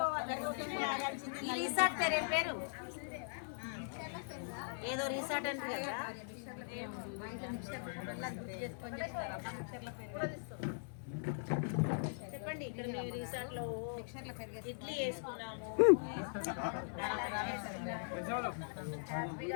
రిసార్ట్ పేరు ఏదో రిసార్ట్ అంటే కదా. చెప్పండి. ఇక్కడ మేము రిసార్ట్ లో ఇడ్లీ వేసుకున్నాము.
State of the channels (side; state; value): right; silent; 51 dB below the other